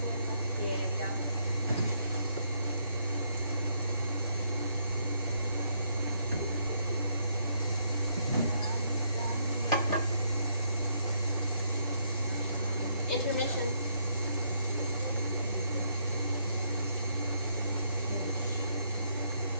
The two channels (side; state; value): both; inverted; correlation -0.73